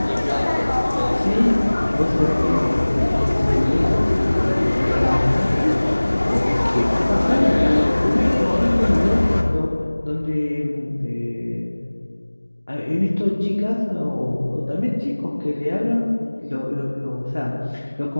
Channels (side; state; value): both; inverted; correlation -1.00